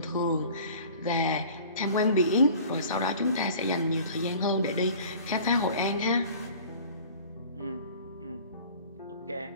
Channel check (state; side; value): inverted; both; correlation -0.45